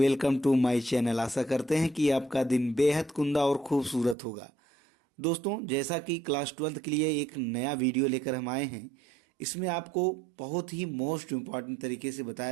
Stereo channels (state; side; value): drops out; left; at 4.2 s